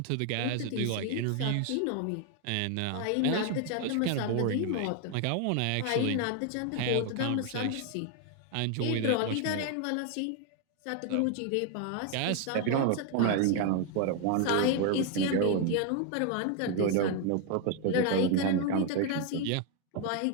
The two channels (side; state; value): both; different; correlation 0.01